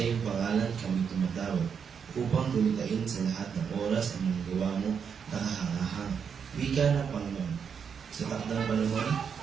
iyong pangalan kami tumatawag upang gumitain sa lahat ng oras ang mga gawa mo nakahangahang. Wika ng Panginoon. Sa takdang panahon,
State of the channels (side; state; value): left; quieter; 6.9 dB